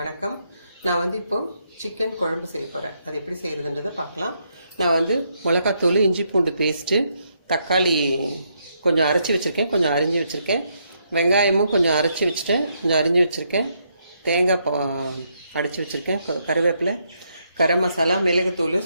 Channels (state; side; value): inverted; both; correlation -0.77